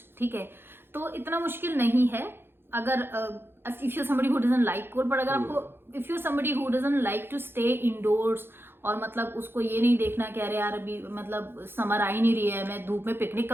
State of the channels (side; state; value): left; late; 0.11 ms